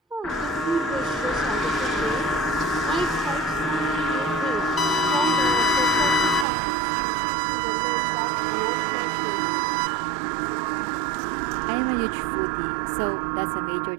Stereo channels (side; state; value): left; drops out; at 6.5 s